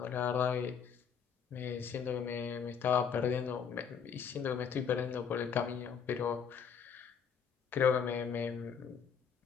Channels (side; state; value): right; quieter; 7.0 dB